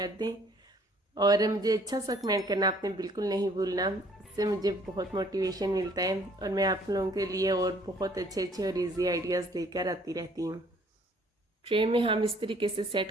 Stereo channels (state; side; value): normal; both; correlation 0.59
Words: दें और मुझे अच्छा सा कमेंट करना आपने बिल्कुल नहीं भूलना, इससे मुझे बहुत मोटिवेशन मिलता है और मैं आप लोगों के लिए और बहुत अच्छे अच्छे और इजी आइडियाज़ लेकर आती रहती हूँ। ट्रे में हम इस तरीके से सेट